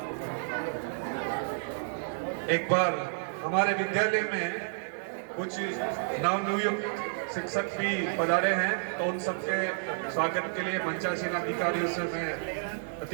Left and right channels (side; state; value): left; silent; digital silence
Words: एक बार हमारे विद्यालय में कुछ नवनियुक्त शिक्षक भी पधारे हैं, तो उन सबके स्वागत के लिए मंचासीन अधिकारियों से मैं